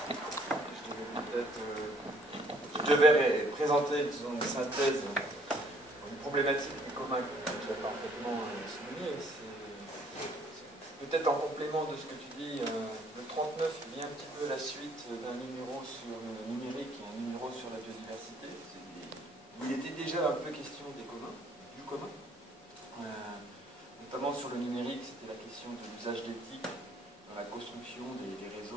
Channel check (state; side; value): normal; both; correlation 0.61